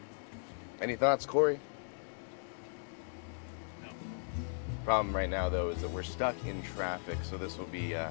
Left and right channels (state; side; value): silent; right; digital silence